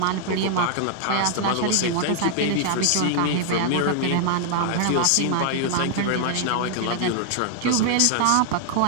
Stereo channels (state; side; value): different; both; correlation 0.00